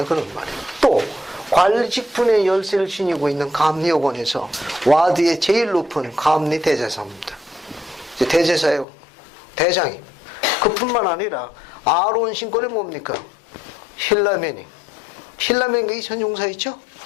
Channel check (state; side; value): drops out; right; at 8.8 s